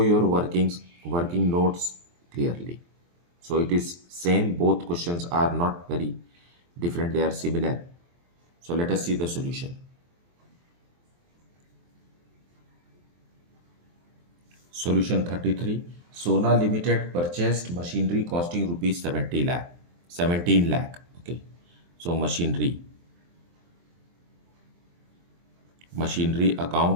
your working notes clearly. So it is same, both questions are not very different, they are similar. So let us see the solution. Solution 33. Sona Limited purchased machinery costing rupees 17 lakh. Okay. So machinery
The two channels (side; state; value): left; late; 23 ms